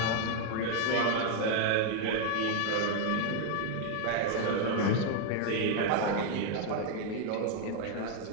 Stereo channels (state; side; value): different; both; correlation 0.00